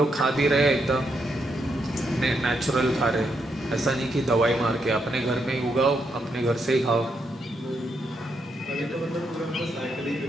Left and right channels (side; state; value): both; normal; correlation 0.79